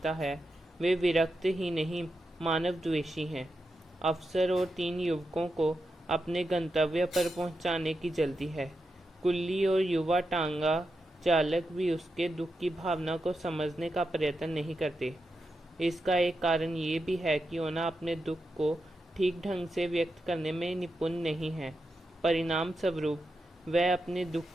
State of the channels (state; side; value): normal; both; correlation 0.88